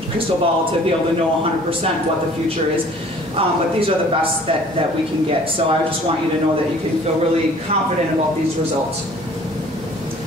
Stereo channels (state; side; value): normal; both; correlation 0.52